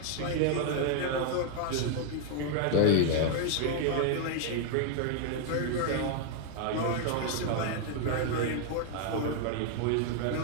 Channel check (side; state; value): both; different; correlation 0.00